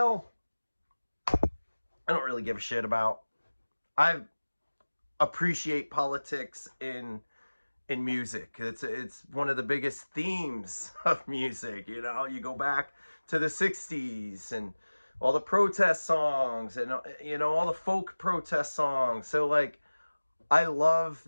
I don't really give a shit about. I appreciate politics in music. It's one of the biggest themes of music. You know, you go back to the 60s and all the protest songs and, you know, all the folk protest songs. So, like, I love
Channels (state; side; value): inverted; both; correlation -1.00